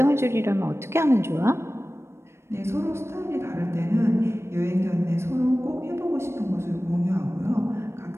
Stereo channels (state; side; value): late; left; 0.13 ms